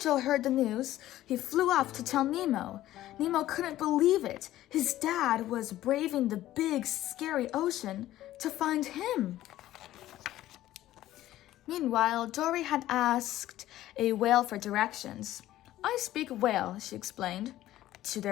heard the news, he flew off to tell Nemo. Nemo couldn't believe it. His dad was braving the big, scary ocean to find him. Meanwhile, Dory had asked a whale for directions. I speak whale, she explained. To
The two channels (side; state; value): right; quieter; 14.3 dB